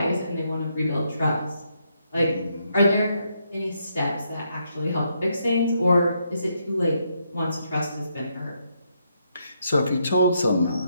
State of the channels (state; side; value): inverted; both; correlation -0.77